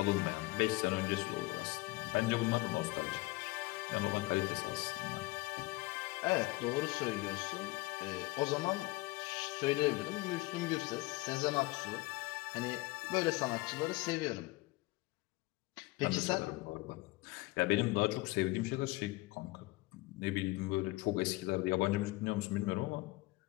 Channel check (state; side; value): quieter; right; 21.6 dB